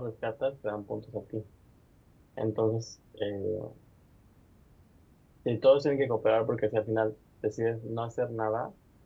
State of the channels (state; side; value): identical; both; correlation 1.00